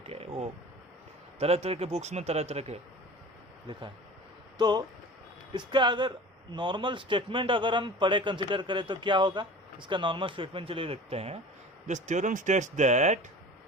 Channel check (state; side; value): normal; both; correlation 0.39